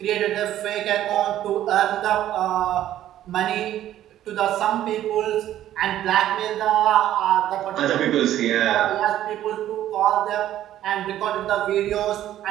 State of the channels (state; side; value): quieter; left; 12.4 dB